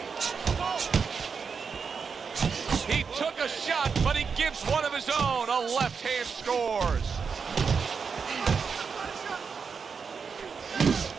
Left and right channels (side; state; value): left; quieter; 5.7 dB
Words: He took a shot, but he gives one of his own. A left hand scores.